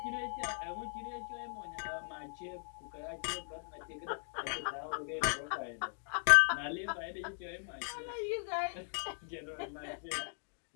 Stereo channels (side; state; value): right; silent; digital silence